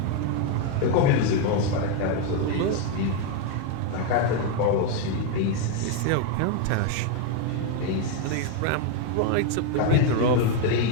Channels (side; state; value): both; different; correlation 0.01